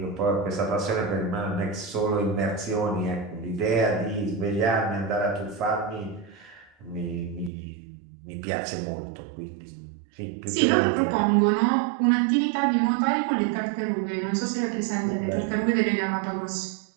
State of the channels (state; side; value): drops out; left; at 7.5 s